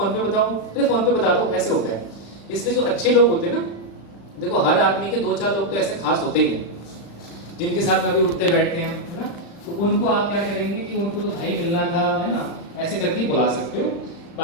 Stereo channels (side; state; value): right; late; 35 ms